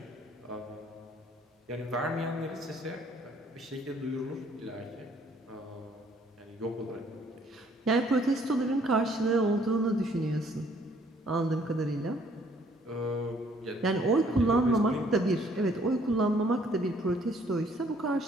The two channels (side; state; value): both; normal; correlation 0.62